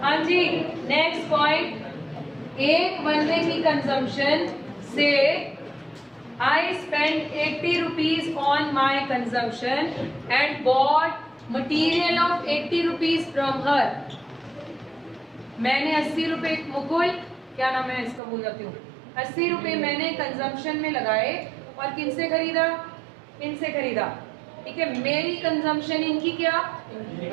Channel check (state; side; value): drops out; left; at 18.2 s